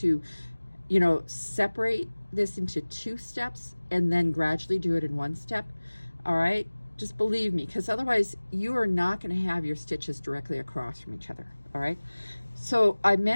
you know, separate this into 2 steps and then gradually do it in 1 step, all right? Just believe me, because otherwise you are not going to have your stitches directly across from each other, all right? So I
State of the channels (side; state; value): both; inverted; correlation -1.00